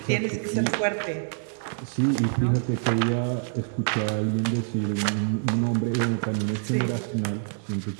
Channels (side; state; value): left; silent; digital silence